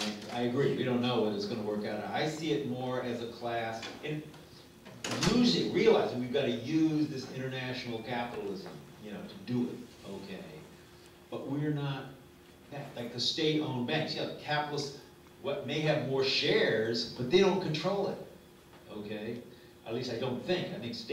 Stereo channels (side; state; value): both; identical; correlation 1.00